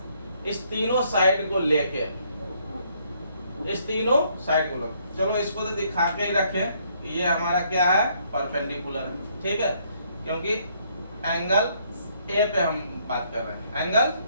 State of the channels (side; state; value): both; inverted; correlation -0.69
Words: इस तीनों साइड को लेके, इस तीनों साइड को लेके, चलो इसको तो दिखा के ही रखें, ये हमारा क्या है परपेंडिकुलर है, ठीक है, क्योंकि एंगल ए पे हम बात कर रहे हैं, एंगल